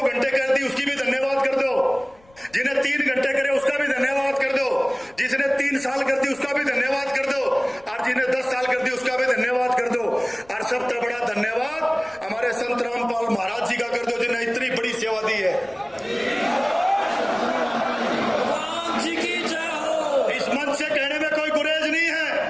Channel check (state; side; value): noise; left; rumble, 29 dB below the sound